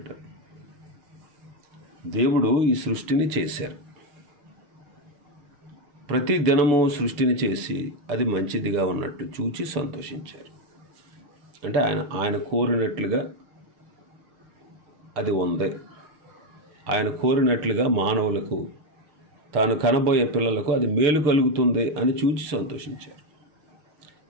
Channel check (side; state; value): left; late; 6.6 ms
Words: దేవుడు ఈ సృష్టిని చేశారు. ప్రతి దినము సృష్టిని చేసి అది మంచిదిగా ఉన్నట్టు చూచి సంతోషించారు. అంటే ఆయన కోరినట్లుగా అది ఉంది. ఆయన కోరినట్లుగా మానవులకు, తాను కనబోయే పిల్లలకు అది మేలు కలుగుతుంది అని చూచి సంతోషించారు.